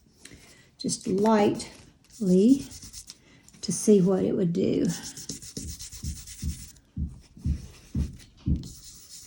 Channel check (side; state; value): both; identical; correlation 1.00